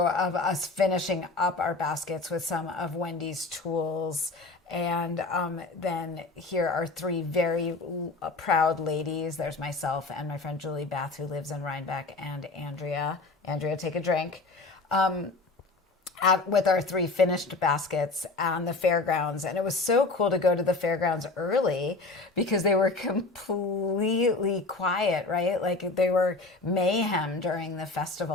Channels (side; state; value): right; quieter; 3.6 dB